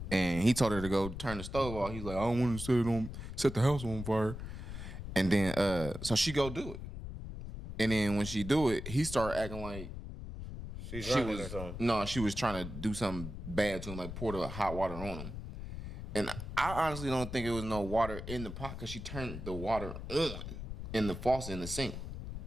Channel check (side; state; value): left; noise; rumble, 8 dB below the sound